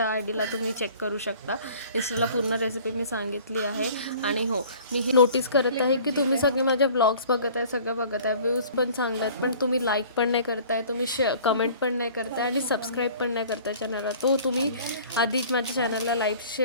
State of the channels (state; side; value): inverted; both; correlation -0.49